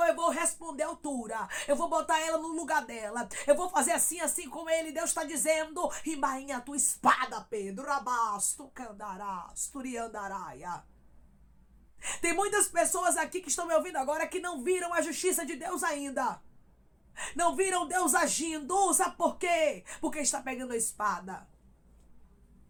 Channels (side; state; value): both; identical; correlation 1.00